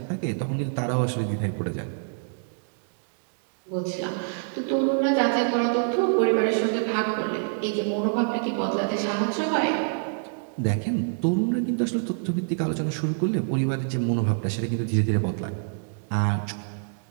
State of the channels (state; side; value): silent; left; digital silence